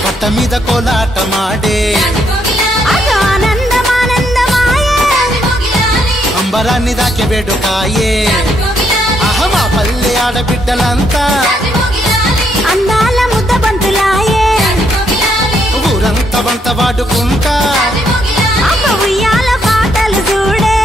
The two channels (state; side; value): normal; both; correlation 0.74